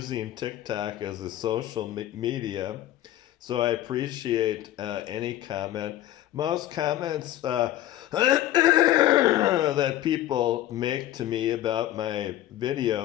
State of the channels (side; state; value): right; quieter; 13.8 dB